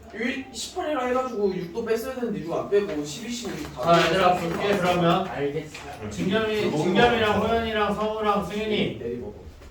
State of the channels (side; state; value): both; identical; correlation 1.00